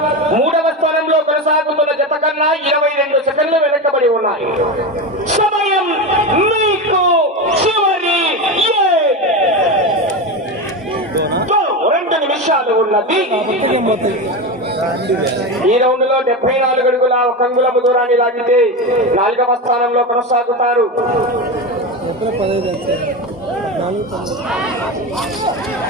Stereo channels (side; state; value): both; normal; correlation 0.19